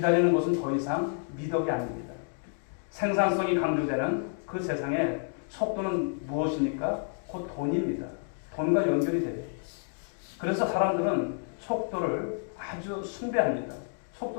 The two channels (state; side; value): silent; right; 58 dB below the other